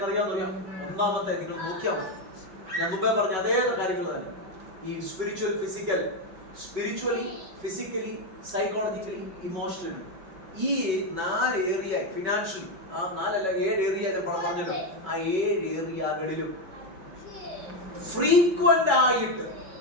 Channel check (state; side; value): late; left; 5.3 ms